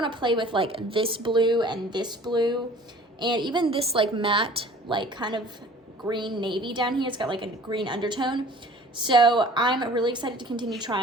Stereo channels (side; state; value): both; normal; correlation 0.48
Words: to play with like this blue and even this like matte, like kind of green navy down here. It's got like a green undertone. So I'm really excited to continue